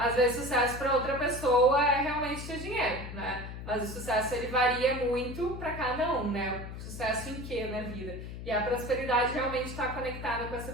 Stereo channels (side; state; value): left; noise; hum, 9 dB below the sound